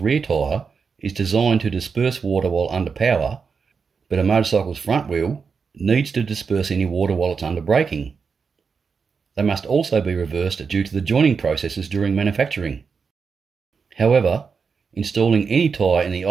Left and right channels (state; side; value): quieter; left; 5.5 dB